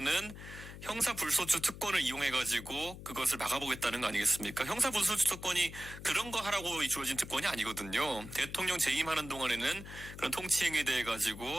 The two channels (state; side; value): noise; left; hum, 13 dB below the sound